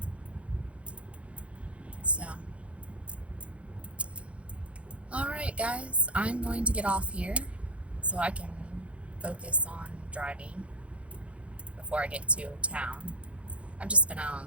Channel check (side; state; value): left; late; 0.062 ms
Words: So, alright guys, I'm going to get off here so I can focus on driving before I get to town. I've just been out